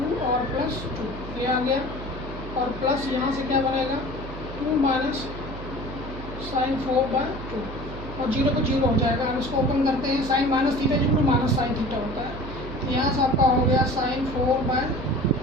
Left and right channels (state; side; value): noise; right; hum, 10 dB below the sound